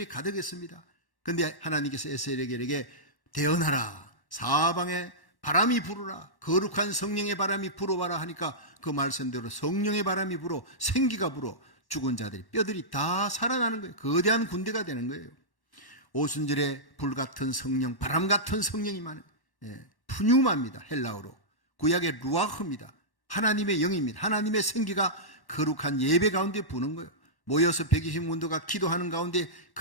가득했습니다. 그런데 하나님께서 에스겔에게 대언하라. 사방에 바람이 불어라. 거룩한 성령의 바람이 불어봐라 하니까 그 말씀대로 성령의 바람이 불어 생기가 불어 죽은 자들이 뼈들이 다 살아나는 거예요. 거대한 군대가 되는 거예요. 오순절에 불같은 성령, 바람 같은 성령이 많아요. 푸뉴마입니다. 헬라어로. 구약의 루아흐입니다. 하나님의 영입니다. 하나님의 생기가 거룩한 예배 가운데 부는 거예요. 모여서 120문도가 기도하는 가운데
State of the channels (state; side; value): late; right; 1.1 ms